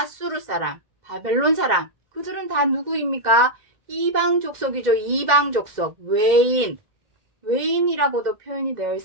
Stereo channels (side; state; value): left; late; 2.1 ms